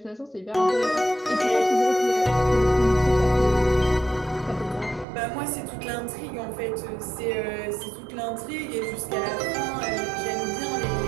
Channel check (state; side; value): drops out; left; at 5.1 s